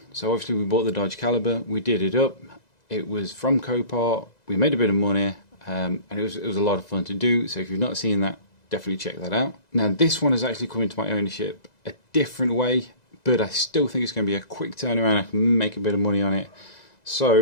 so obviously we bought the Dodge Caliber, we did it up, it was from Copart, we made a bit of money, and it was a lot of fun to do, so if you've not seen that, definitely check that out. Now this one has actually come into my ownership a different way, but I still think it's going to be a quick turnaround, I can make a bit of money on it.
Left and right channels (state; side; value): late; right; 2.0 ms